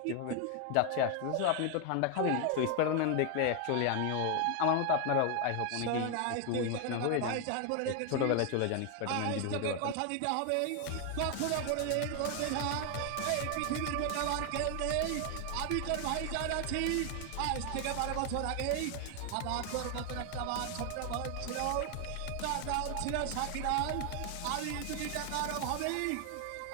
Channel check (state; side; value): different; both; correlation 0.01